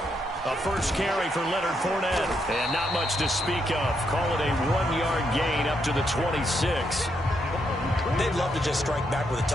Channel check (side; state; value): both; normal; correlation 0.78